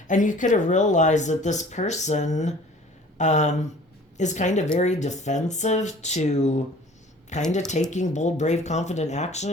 And you could have realized that this person is kind of very defensive to kind of taking bold, brave, confident action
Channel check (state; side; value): normal; both; correlation 0.49